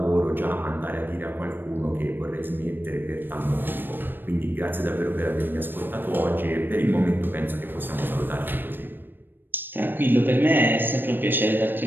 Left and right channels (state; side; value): late; left; 0.095 ms